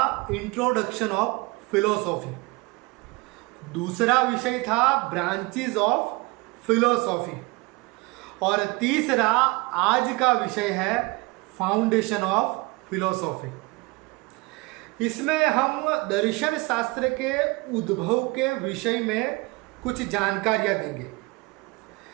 इंट्रोडक्शन ऑफ फिलोसॉफी, दूसरा विषय था ब्रांचेस ऑफ फिलोसॉफी और तीसरा आज का विषय है फाउंडेशन ऑफ फिलोसॉफी। इसमें हम दर्शन शास्त्र के उद्भव के विषय में कुछ जानकारियां देंगे।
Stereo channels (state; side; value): quieter; left; 25.1 dB